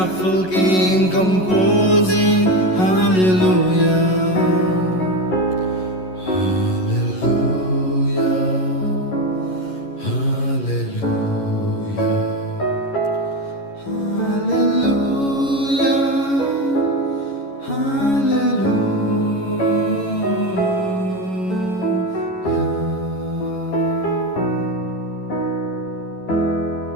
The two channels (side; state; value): right; late; 11 ms